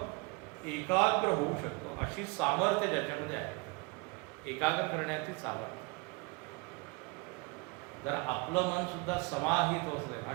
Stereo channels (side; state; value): left; quieter; 28.8 dB